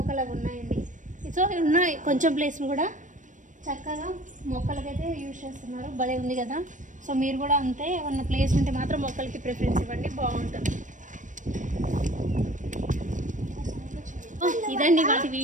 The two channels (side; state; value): left; late; 0.37 ms